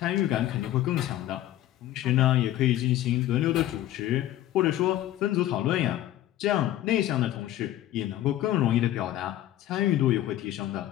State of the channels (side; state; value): right; quieter; 13.6 dB